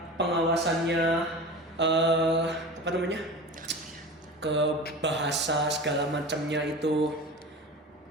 pengawasannya apa namanya ke bahasa segala macamnya itu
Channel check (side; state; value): both; normal; correlation 0.33